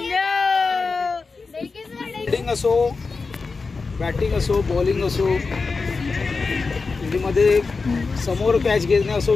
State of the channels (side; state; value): right; quieter; 4.3 dB